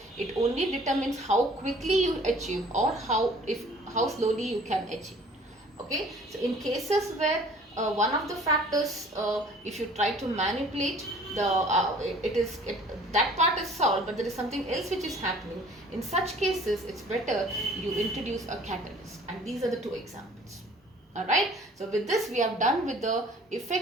It only determines how quickly you achieve or how slowly you can achieve. Okay, so in cases where one of the factors, if you try to manipulate that part is solved, but there is something else which is happening. In such cases, it's better you introduce a catalyst, and these are the two examples. Alright, so with this we have done with the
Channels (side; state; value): both; normal; correlation 0.52